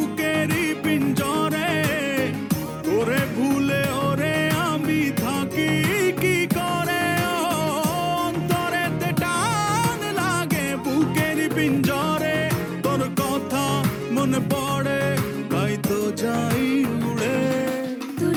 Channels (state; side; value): identical; both; correlation 1.00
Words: পিঞ্জরে, ওরে ভুলে ওরে আমি থাকি কি করে। অন্তরেতে টান লাগে বুকেরই পিঞ্জরে, তোর কথা মনে পড়ে তাই তো যাই উড়ে। তোর